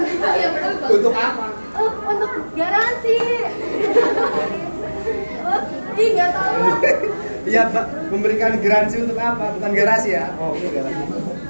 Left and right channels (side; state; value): both; inverted; correlation -1.00